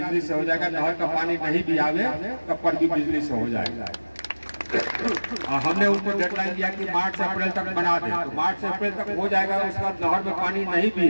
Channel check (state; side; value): inverted; both; correlation -1.00